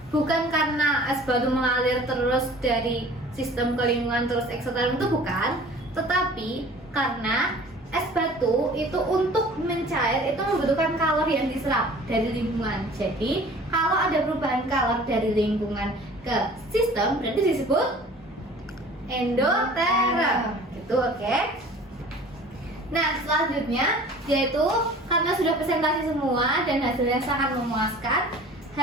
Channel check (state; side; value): normal; both; correlation 0.46